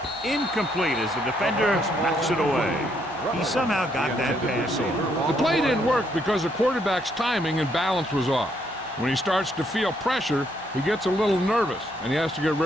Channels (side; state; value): both; normal; correlation 0.72